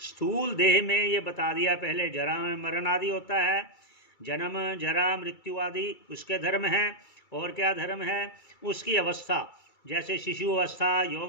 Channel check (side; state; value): right; late; 2.3 ms